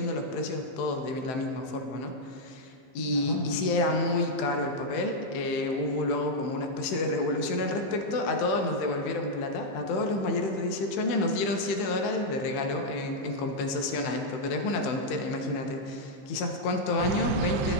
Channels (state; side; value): late; right; 15 ms